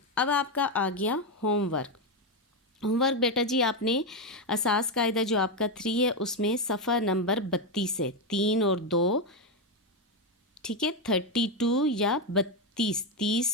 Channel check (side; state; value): both; normal; correlation 0.07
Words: अब आपका आ गया होमवर्क। होमवर्क बेटा जी, आपने असास कायदा जो आपका 3 है उसमें सफ़ा नंबर 32 है, 3 और 2। ठीक है, 32 या 32,